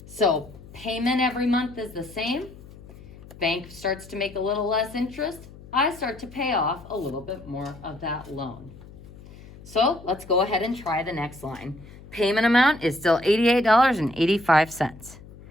So payment every month is the same. bank starts to make a little less interest, I start to pay off a little bit more of that loan. So let's go ahead and try the next line. Payment amount is still $88.85.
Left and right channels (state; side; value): noise; left; hum, 19 dB below the sound